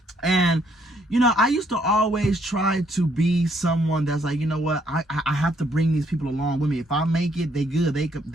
And I used to always try to be someone that's like, you know what, I have to bring these people along with me. If I make it, they good, they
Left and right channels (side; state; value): both; normal; correlation 0.69